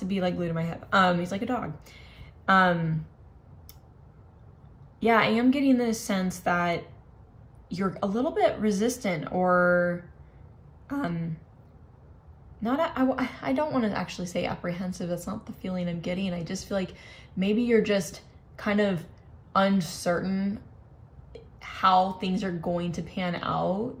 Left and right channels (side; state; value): both; identical; correlation 1.00